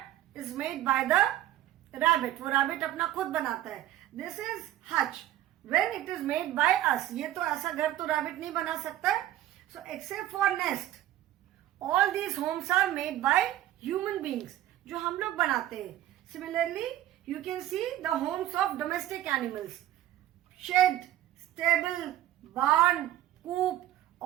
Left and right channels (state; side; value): quieter; left; 13.6 dB